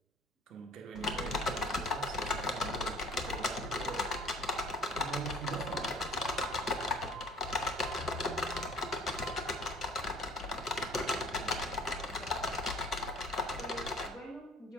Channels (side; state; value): both; normal; correlation 0.51